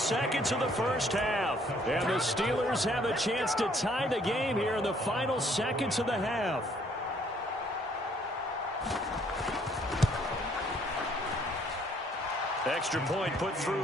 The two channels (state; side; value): normal; both; correlation 0.63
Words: of the first half. And the Steelers have a chance to tie the game here in the final seconds of the half. Extra point put